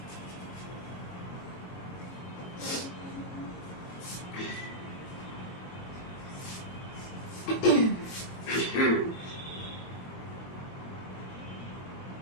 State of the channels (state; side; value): late; right; 22 ms